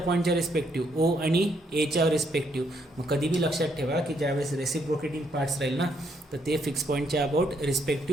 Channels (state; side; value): normal; both; correlation 0.73